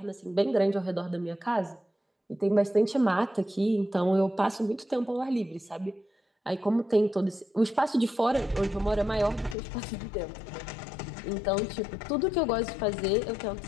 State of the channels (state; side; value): drops out; right; at 9.6 s